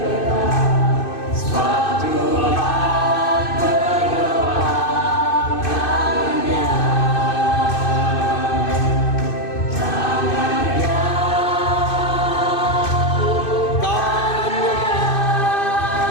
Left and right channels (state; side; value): late; right; 2.6 ms